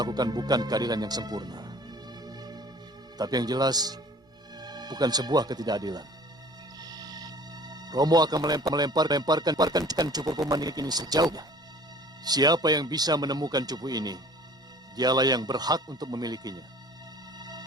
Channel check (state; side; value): normal; both; correlation 0.48